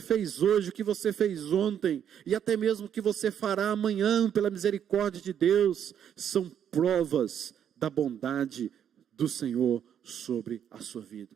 hoje, o que você fez ontem, e até mesmo o que você fará amanhã, pela misericórdia de Deus, são provas da bondade do Senhor sobre a sua vida.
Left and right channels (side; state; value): left; quieter; 9.1 dB